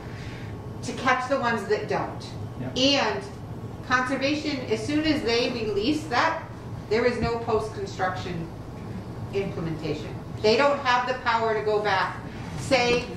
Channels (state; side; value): identical; both; correlation 1.00